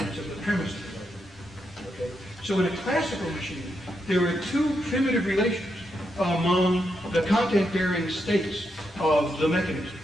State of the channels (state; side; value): normal; both; correlation 0.82